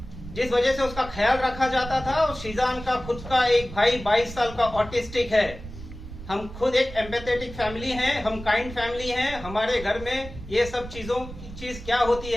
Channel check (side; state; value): right; noise; rumble, 13 dB below the sound